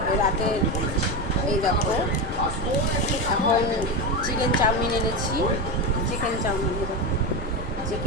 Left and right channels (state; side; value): normal; both; correlation 0.16